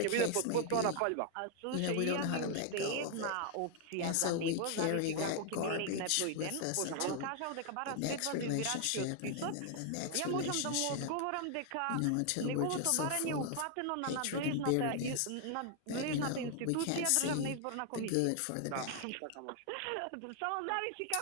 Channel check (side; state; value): both; different; correlation 0.00